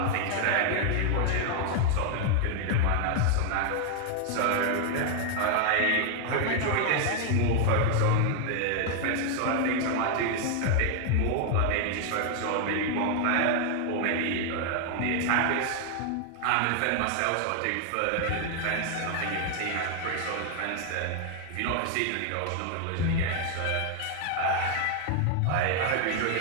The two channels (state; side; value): different; both; correlation 0.00